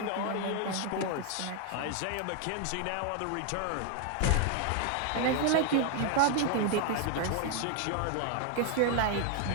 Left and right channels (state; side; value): different; both; correlation 0.00